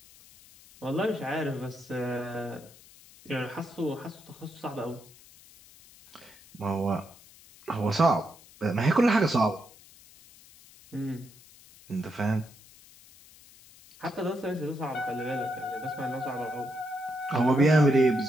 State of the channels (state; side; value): noise; left; hiss, 23 dB below the sound